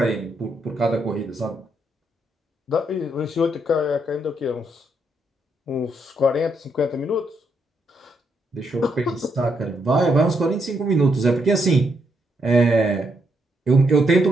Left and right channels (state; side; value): normal; both; correlation 0.77